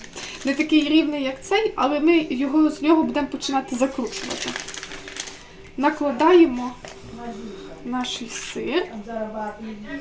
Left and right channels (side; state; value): both; identical; correlation 1.00